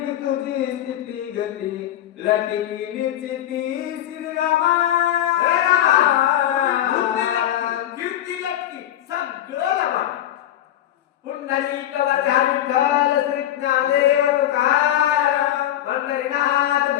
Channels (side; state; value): right; quieter; 12.1 dB